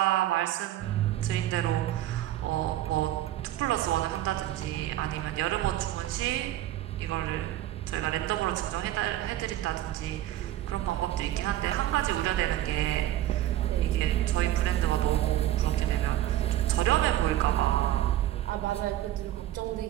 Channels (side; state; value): left; quieter; 13.5 dB